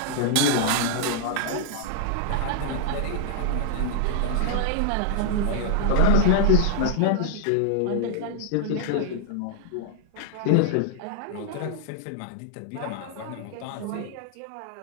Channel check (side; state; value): both; different; correlation 0.00